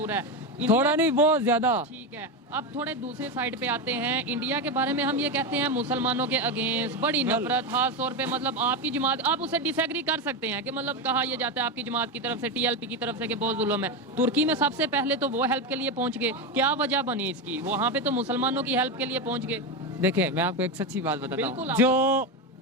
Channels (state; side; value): normal; both; correlation 0.13